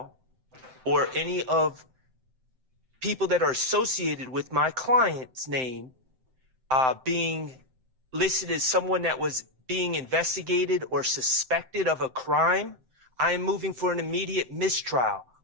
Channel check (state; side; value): late; left; 7.7 ms